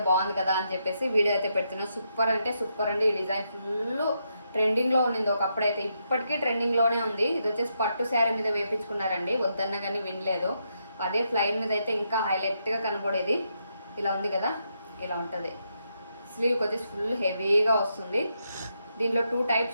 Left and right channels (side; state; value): both; inverted; correlation -0.81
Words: బాగుంది కదా అని చెప్పేసి వీడియో అయితే పెడుతున్నాను. సూపర్ అంటే సూపర్ అండి. ఈ డిజైన్ ఫుల్ ట్రెండింగ్లో ఉండింది ఒకప్పుడైతే, ఇప్పటికీ ట్రెండింగ్లోనే ఉంది. ఇది వచ్చేసి పట్టు శారీ మీద వేయించుకున్నారండి, వద్దన్న కానీ వినలేదు. అదే ఫ్లైన్ మీద అయితే ఇంకా హైలైట్గా కనపడేది. ఇలా ఉంది కదా, ఇలా ఉంటుంది. స్లీవ్కి వచ్చేసి ఫుల్ హెవీగా వస్తుంది. దీంట్లో 2 types